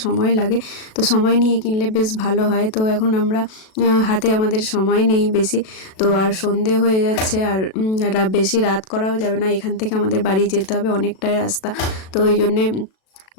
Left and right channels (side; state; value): right; late; 37 ms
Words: সময় লাগে, তো সময় নিয়ে কিনলে বেশ ভালো হয়। তো এখন আমরা হাতে আমাদের সময় নেই বেশি, তো আর সন্ধে হয়ে যাচ্ছে, আর বেশি রাত করাও যাবে না, এখান থেকে আমাদের বাড়ি যেতে হবে অনেকটাই রাস্তা, তো ওই জন্যে